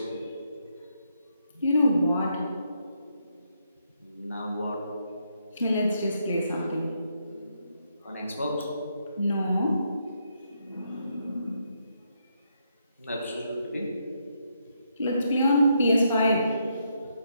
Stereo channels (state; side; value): inverted; both; correlation -0.77